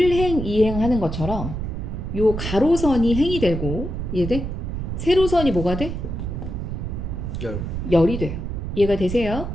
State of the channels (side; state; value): right; noise; rumble, 4 dB below the sound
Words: 2행 하는 것처럼 요 가로선이 행이 되고, 이해돼? 세로선이 뭐가 돼? 열이 돼요. 이해가 되세요?